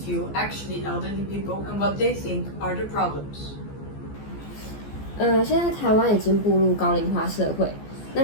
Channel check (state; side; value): late; right; 14 ms